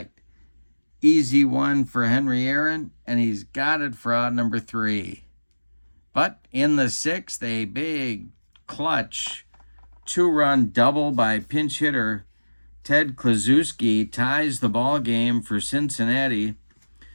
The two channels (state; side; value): inverted; both; correlation -1.00